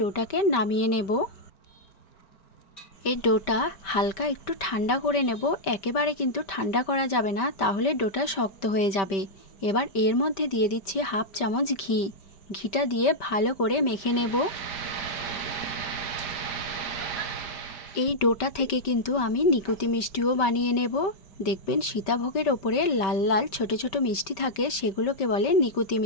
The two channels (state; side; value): late; right; 5.2 ms